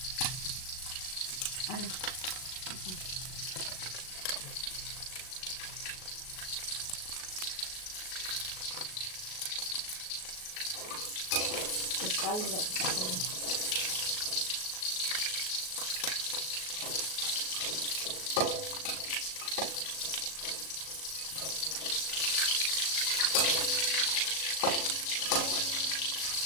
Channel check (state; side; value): late; right; 38 ms